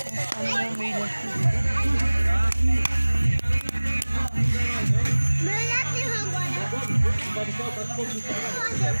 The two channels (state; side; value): inverted; both; correlation -1.00